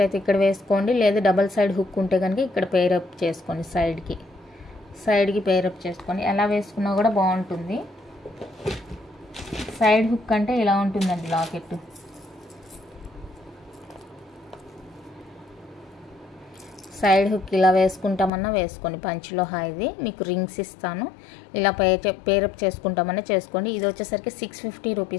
అయితే ఇక్కడ వేసుకోండి, లేదా డబల్ సైడ్ హుక్ ఉంటే కనుక ఇక్కడ పేరప్ చేసుకోండి. సైడ్కి పేరప్ చేసుకొని ఎలా వేసుకున్నా కూడా బాగుంటుంది. సైడ్ హుక్ అంటే ఇలా ఉంటుందండి లాకెట్. సైడ్ హుక్ ఇలా వేసుకుంటామన్నా వేసుకోండి. పంచలోహ ఇది మీకు రింగ్స్ ఇస్తాను, ఇలా పేరప్ చేసుకుంటామన్నా చేసుకోండి. ఇది వచ్చేసరికి 650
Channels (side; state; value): right; drops out; at 18.3 s